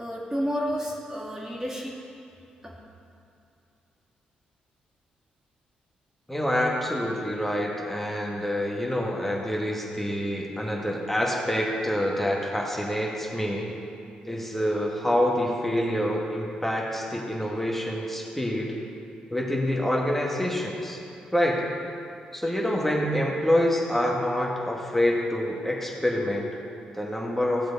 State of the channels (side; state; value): both; normal; correlation 0.88